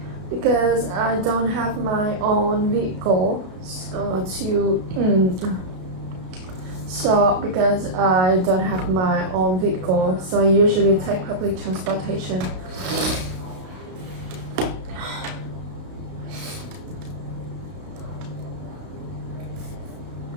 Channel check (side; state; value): left; late; 32 ms